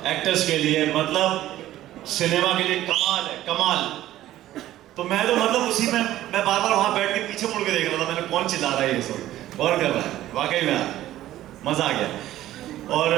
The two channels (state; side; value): quieter; left; 14.0 dB